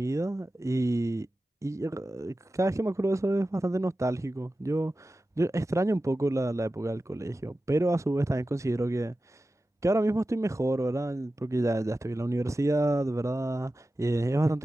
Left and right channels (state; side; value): normal; both; correlation 0.94